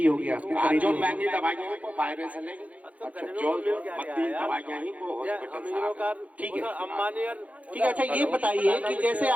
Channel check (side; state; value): left; late; 0.069 ms